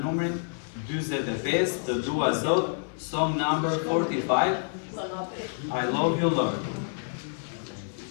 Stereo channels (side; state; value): right; silent; digital silence